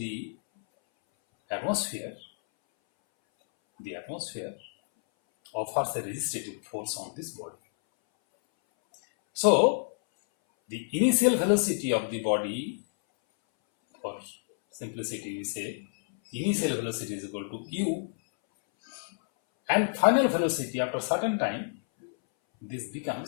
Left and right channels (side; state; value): right; silent; 59 dB below the other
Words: atmosphere offers a resistative force on this body. So the initial velocity of the body, for simplicity we say initial velocity is equal to u, and final velocity after certain time, this